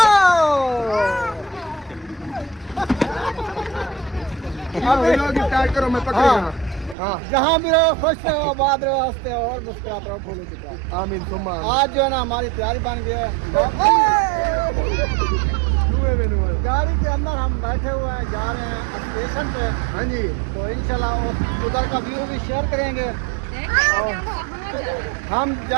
करो, मैं पकड़ जहाँ भी रहो, खुश रहो, आबाद रहो, हंसते और मुस्कुराते रहो। फूलों की तरह आमीन। सुम्मा आज जो है ना हमारी तैयारी बन गई है। गाड़ी के अंदर हम बैठे हुए हैं, जा रहे हैं स्टेशन पे। हाँ जी, तो इंशाल्लाह उधर का व्यू भी शेयर करेंगे। हम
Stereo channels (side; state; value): left; drops out; at 7.0 s